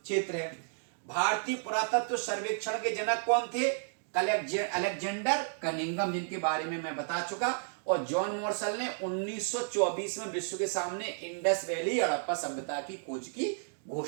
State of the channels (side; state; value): left; silent; digital silence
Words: क्षेत्र है। भारतीय पुरातत्व सर्वेक्षण के जनक कौन थे? अलेक्जेंडर कनिंघम, जिनके बारे में मैं बता चुका। और जॉन मॉर्सल ने 1924 में विश्व के सामने इंडस वैली हड़प्पा सभ्यता की खोज की